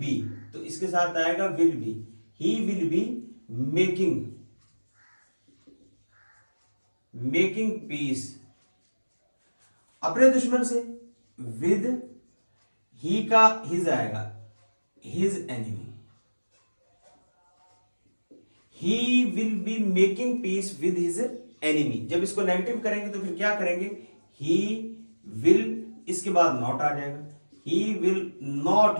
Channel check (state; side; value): inverted; both; correlation -1.00